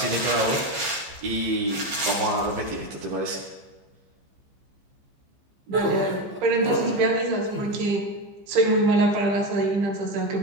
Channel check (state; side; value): late; left; 15 ms